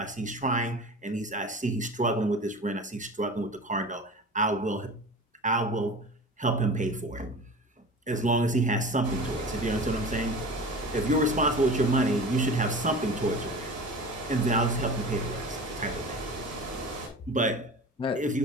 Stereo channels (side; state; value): both; normal; correlation 0.35